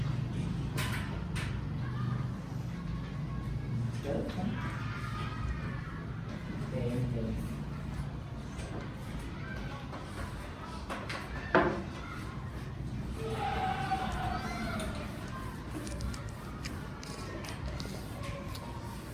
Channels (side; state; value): both; identical; correlation 1.00